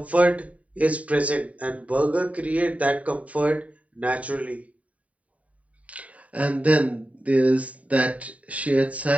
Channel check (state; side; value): late; left; 0.068 ms